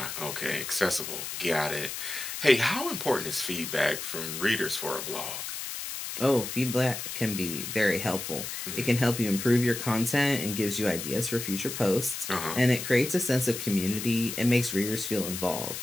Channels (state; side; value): noise; left; hiss, 6 dB below the sound